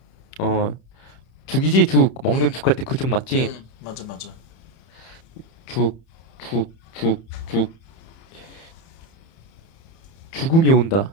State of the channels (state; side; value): late; right; 31 ms